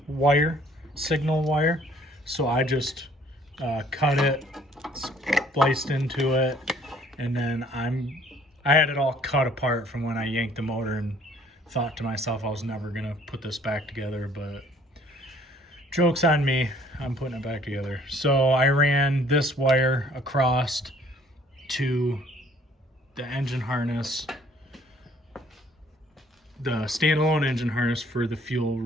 wire, signal wire. So I just cut it, spliced into it, and then I had it all cut apart from when I yanked the motor, and thought to myself I was never gonna put this back together, but joke's on me, I'm putting it back together. So I ran this wire across to the engine harness, the standalone engine harness for the fuel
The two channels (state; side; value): normal; both; correlation 0.58